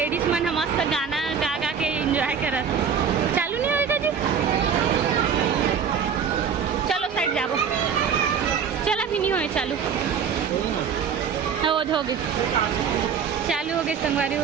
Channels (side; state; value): left; quieter; 7.0 dB